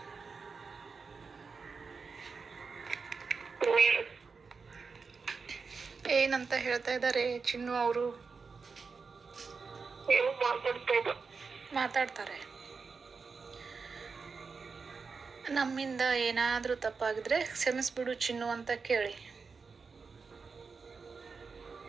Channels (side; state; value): left; quieter; 4.9 dB